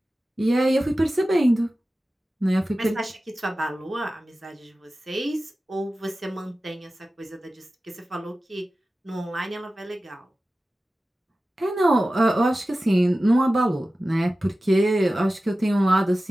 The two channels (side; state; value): both; normal; correlation 0.95